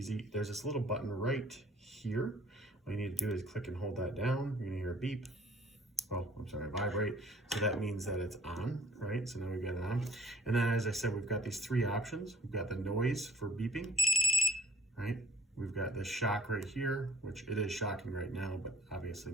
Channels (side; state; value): both; normal; correlation 0.54